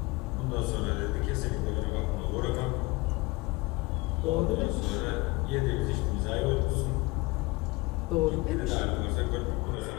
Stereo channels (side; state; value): right; quieter; 23.0 dB